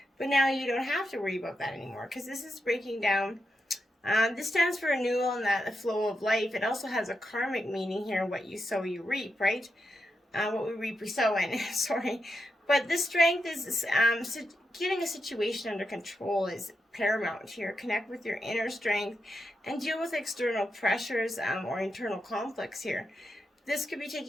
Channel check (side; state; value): both; normal; correlation 0.86